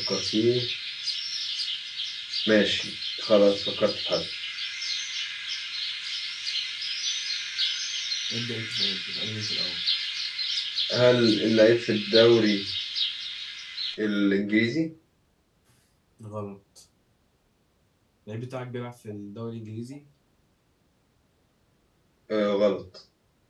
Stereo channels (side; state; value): both; identical; correlation 1.00